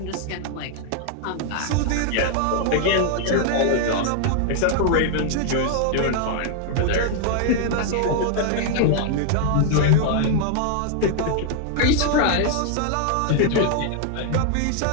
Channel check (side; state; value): both; different; correlation 0.00